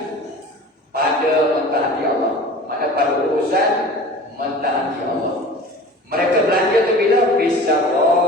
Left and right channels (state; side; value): normal; both; correlation 0.39